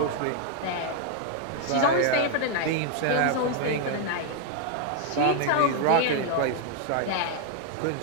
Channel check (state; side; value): different; both; correlation 0.00